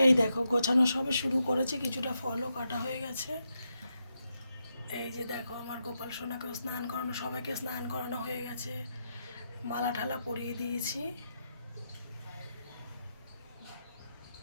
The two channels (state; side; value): inverted; both; correlation -0.84